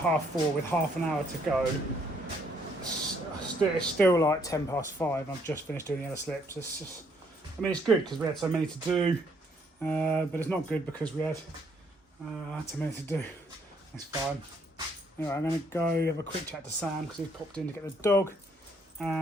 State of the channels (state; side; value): normal; both; correlation 0.68